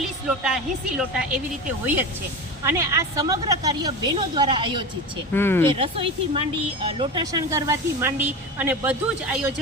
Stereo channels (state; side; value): normal; both; correlation 0.26